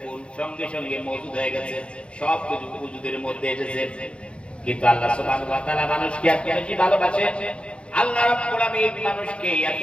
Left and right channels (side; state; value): right; late; 0.058 ms